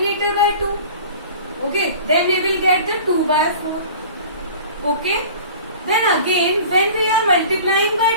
by 2. Okay, then we will get the 2 by 4. Okay, then again when we are multiplying by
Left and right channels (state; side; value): inverted; both; correlation -0.42